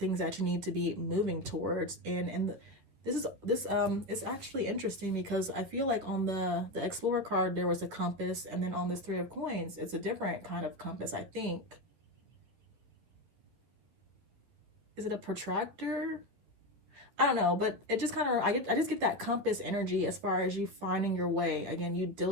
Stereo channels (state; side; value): late; left; 11 ms